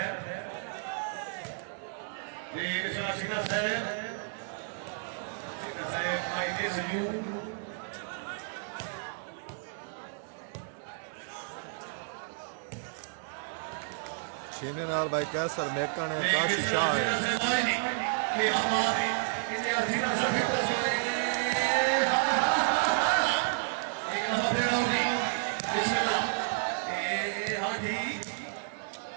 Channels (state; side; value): silent; left; digital silence